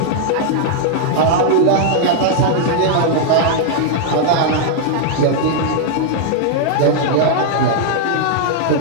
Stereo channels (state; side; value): different; both; correlation -0.01